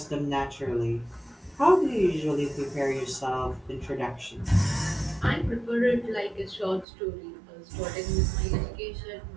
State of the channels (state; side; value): drops out; left; at 6.9 s